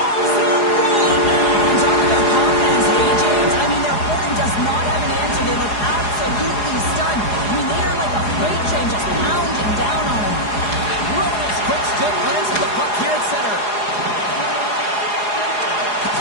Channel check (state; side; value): late; right; 4.8 ms